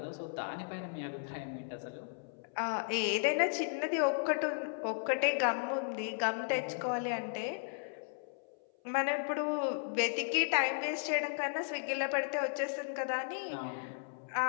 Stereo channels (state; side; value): silent; right; 54 dB below the other